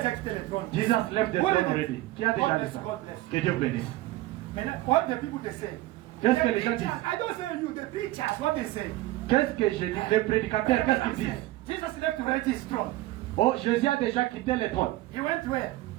quitté le trône. Jesus left the What throne is it? already. Qui a déjà God dit bless, ça? God bless. Que Dieu bénisse. Maintenant, what the people they say? Qu'est-ce que The les gens preachers, disent? I don't say you, the preachers, what they say? Qu'est-ce que je dis? Les prédicateurs, qu'est-ce qu'ils disent? Jesus left already his throne. Oh, Jésus a déjà quitté le trône. He went where?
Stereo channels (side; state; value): left; quieter; 17.5 dB